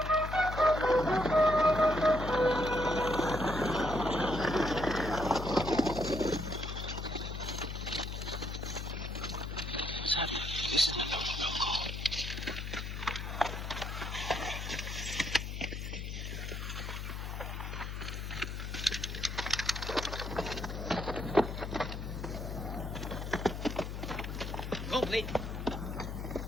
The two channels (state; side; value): noise; left; hum, 5 dB below the sound